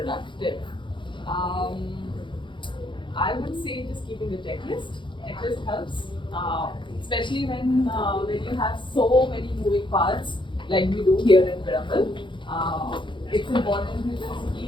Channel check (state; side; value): late; right; 0.23 ms